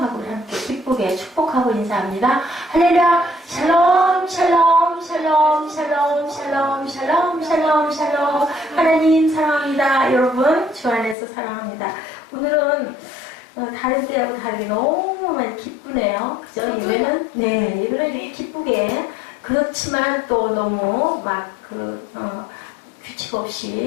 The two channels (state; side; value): drops out; right; at 11.2 s